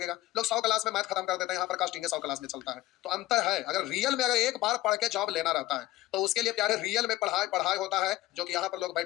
लोग 100 क्लास में मैथ खत्म कर देते हैं, यहाँ पर कास्टिंग 100 क्लास में चलता है। तो अंतर है। अगर रियल में अगर एक बार पढ़ के जॉब लेना रहता है तो उसके लिए प्यारे रियल में पढ़ाई पढ़ाई होता है, जो कि यहाँ पर लोग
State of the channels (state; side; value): quieter; right; 16.8 dB